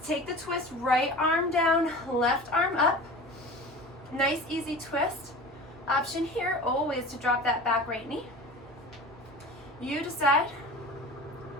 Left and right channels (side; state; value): both; normal; correlation 0.36